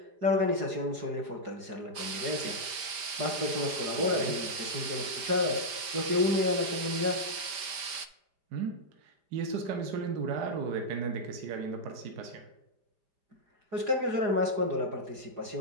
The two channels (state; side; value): late; left; 5.2 ms